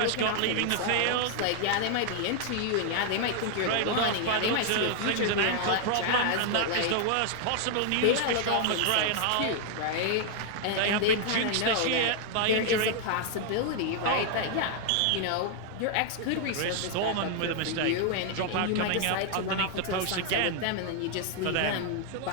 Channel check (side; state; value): both; different; correlation 0.00